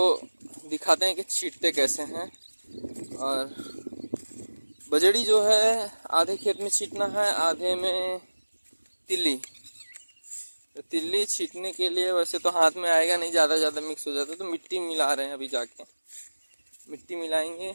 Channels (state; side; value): inverted; both; correlation -1.00